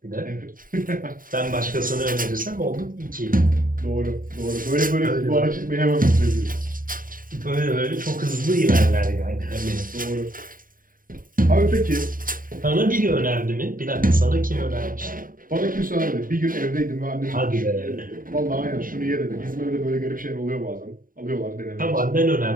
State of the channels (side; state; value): left; late; 0.40 ms